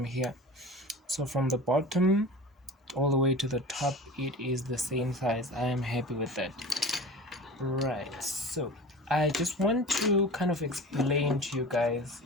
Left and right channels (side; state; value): both; normal; correlation 0.35